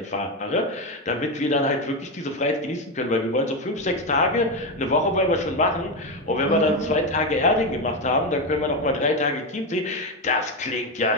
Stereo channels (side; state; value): both; normal; correlation 0.11